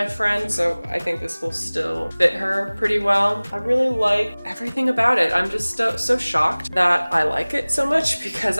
friend, so I think this will still fit her pretty well. I really like everything about it. I'm just so shocked that I like it so much, because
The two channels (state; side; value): inverted; both; correlation -1.00